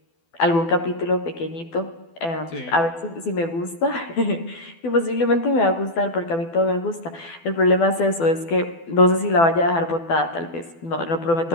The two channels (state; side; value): late; right; 12 ms